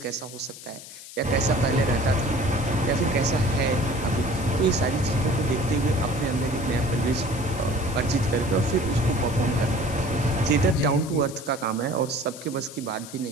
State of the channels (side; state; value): left; noise; hiss, 15 dB below the sound